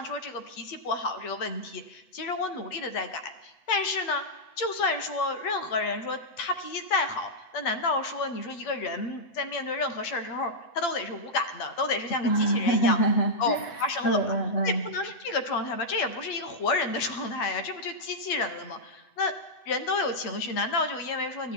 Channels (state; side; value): late; right; 8.1 ms